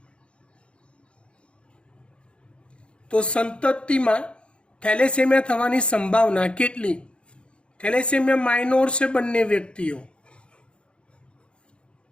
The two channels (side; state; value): right; late; 0.057 ms